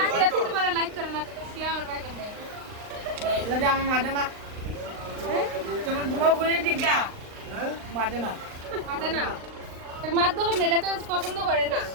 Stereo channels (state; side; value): late; left; 39 ms